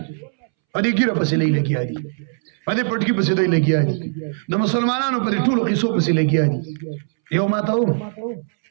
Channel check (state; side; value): silent; left; 65 dB below the other